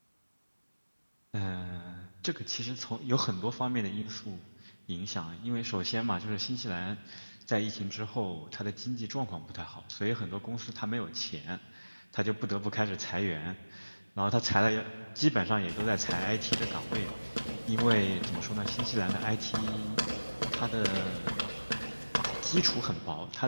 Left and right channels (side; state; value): both; inverted; correlation -1.00